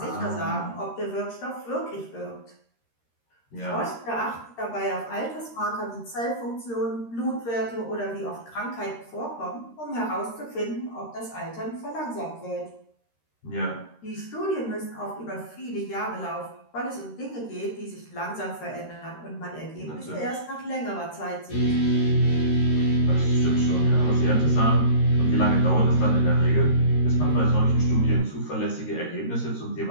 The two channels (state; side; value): late; right; 13 ms